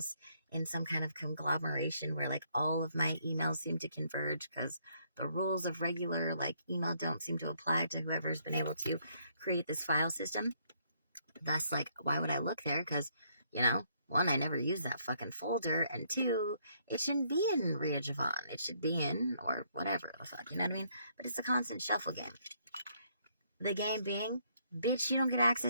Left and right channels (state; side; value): inverted; both; correlation -0.70